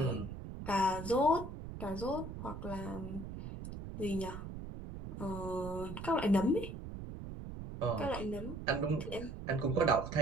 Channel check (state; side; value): noise; right; rumble, 9 dB below the sound